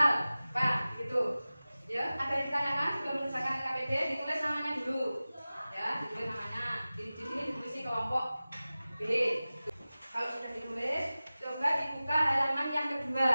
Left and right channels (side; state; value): both; inverted; correlation -0.97